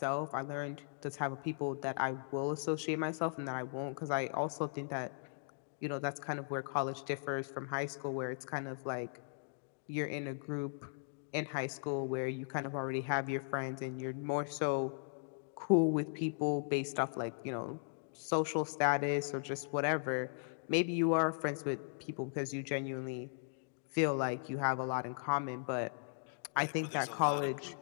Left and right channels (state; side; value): silent; right; digital silence